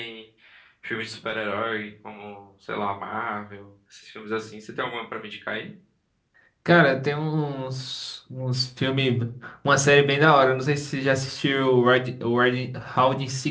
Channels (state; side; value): identical; both; correlation 1.00